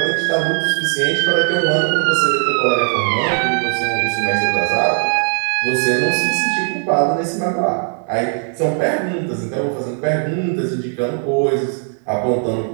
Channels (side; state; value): left; silent; 56 dB below the other